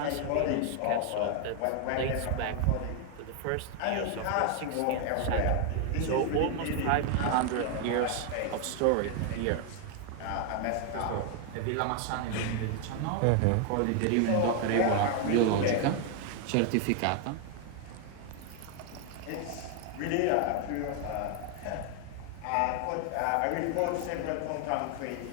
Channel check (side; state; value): both; different; correlation 0.00